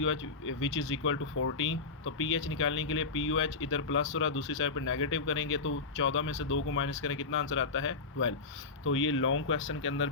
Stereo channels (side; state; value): right; quieter; 4.2 dB